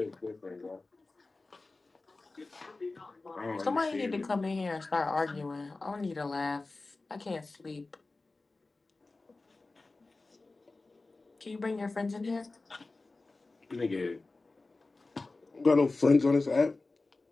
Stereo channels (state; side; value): quieter; right; 3.4 dB